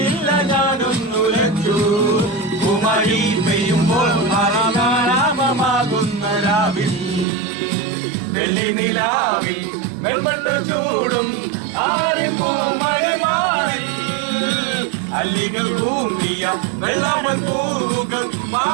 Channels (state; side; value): drops out; left; at 7.2 s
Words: ഞാനൊന്നുലച്ചു കുമാരി പെയ്യുമ്പോൾ മറിയാരാപമാകുന്ന രാവിൽ വെള്ളി നിലാവിൽ വെൺമട്ട ചൂടും ആരും പൂമഴമാറിൽ അല്ലികൾ കൂമ്പിയ വെള്ളാമ്പൽ പൂവുകൾ